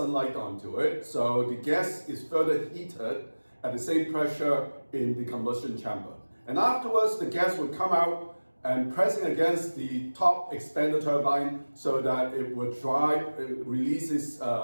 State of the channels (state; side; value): inverted; both; correlation -1.00